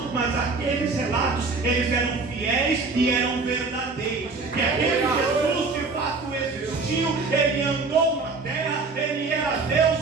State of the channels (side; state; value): left; quieter; 4.0 dB